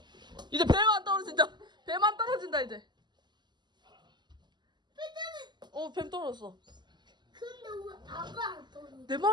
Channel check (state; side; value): late; left; 0.21 ms